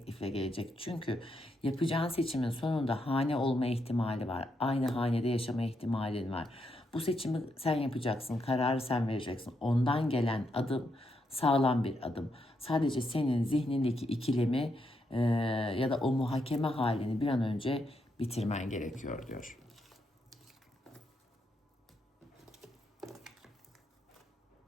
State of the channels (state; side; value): normal; both; correlation 0.80